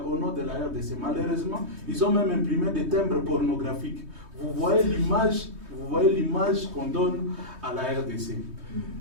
nom de la RDC. Malheureusement, ils ont même imprimé des timbres pornographiques. Vous voyez l'image qu'on donne à la RDC.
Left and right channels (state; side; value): late; left; 3.2 ms